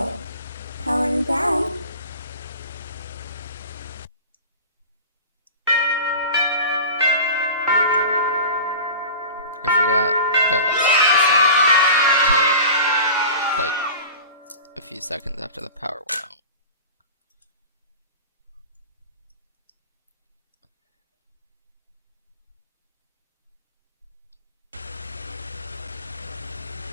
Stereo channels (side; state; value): both; inverted; correlation -0.36